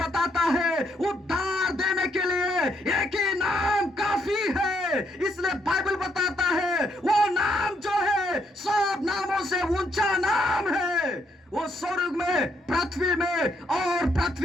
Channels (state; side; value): normal; both; correlation 0.74